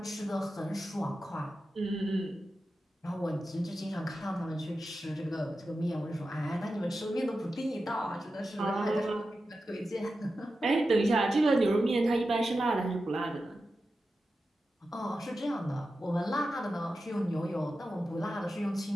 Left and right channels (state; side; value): normal; both; correlation 0.91